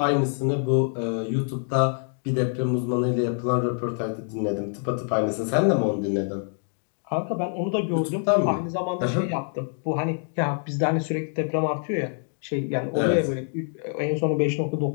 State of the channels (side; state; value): right; silent; 58 dB below the other